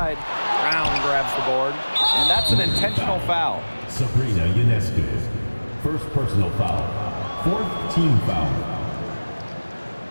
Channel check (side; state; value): both; inverted; correlation -1.00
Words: Brown grabs the board, and that's an intentional foul. Sabrina Ionescu. First personal foul. Fourth team foul.